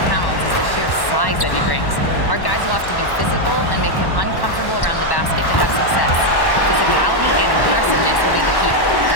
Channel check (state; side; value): late; right; 1.1 ms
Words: Towns is the sheer size that he brings. Our guys will have to be physical and make him uncomfortable around the basket to have success. Physicality and aggressiveness will be the key.